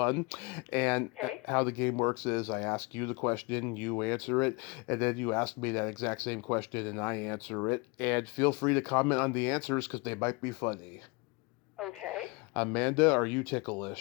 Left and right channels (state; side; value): quieter; right; 27.6 dB